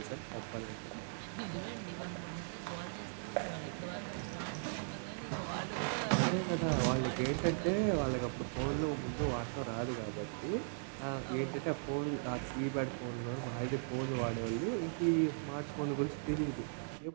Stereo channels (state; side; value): silent; left; digital silence